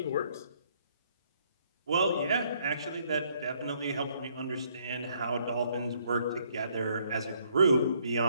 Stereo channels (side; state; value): both; inverted; correlation -0.68